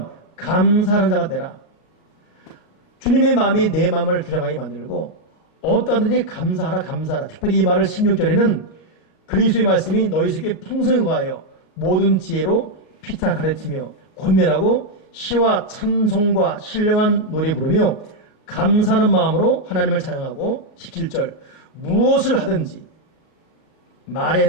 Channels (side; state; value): right; late; 38 ms